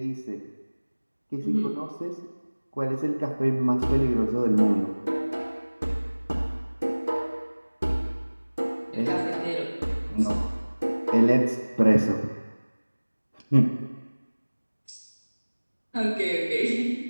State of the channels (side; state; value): both; inverted; correlation -1.00